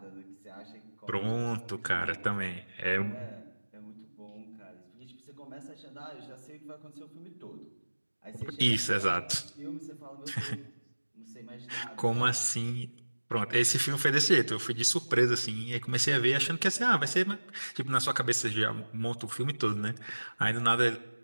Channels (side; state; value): both; inverted; correlation -1.00